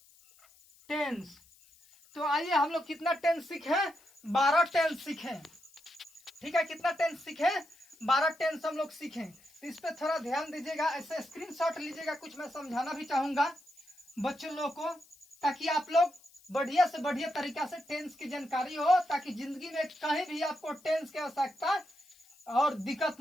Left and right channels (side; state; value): left; noise; hiss, 27 dB below the sound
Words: टेंस। तो आइए हम लोग कितना टेंस सीखे? 12 टेंस सीखे। ठीक है, कितना टेंस सीखे? 12 टेंस हम लोग सीखे। तो इस पे थोड़ा ध्यान दीजिएगा, ऐसे स्क्रीनशॉट लीजिएगा। कुछ मैं समझाना भी चाहूंगा बच्चों लोग को, ताकि आप लोग बढ़िया से बढ़िया तरीका से टेंस की जानकारी हो, ताकि जिंदगी में कहीं भी आपको टेंस की आवश्यकता और दिक्कत